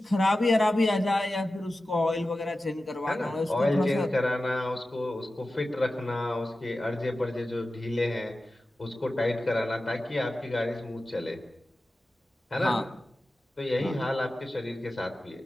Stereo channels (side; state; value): both; normal; correlation 0.94